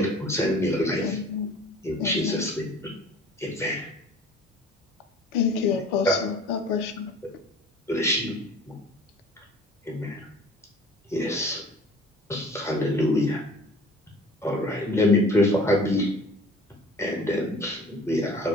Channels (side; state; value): both; normal; correlation 0.46